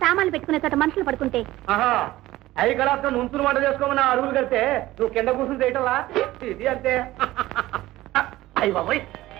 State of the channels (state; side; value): quieter; left; 16.8 dB